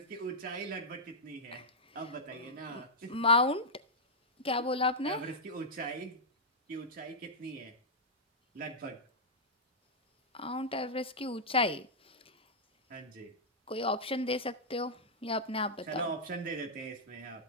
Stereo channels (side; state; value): both; normal; correlation -0.07